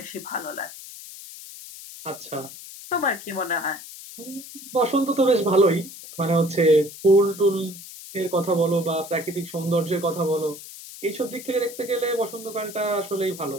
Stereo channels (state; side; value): noise; left; hiss, 14 dB below the sound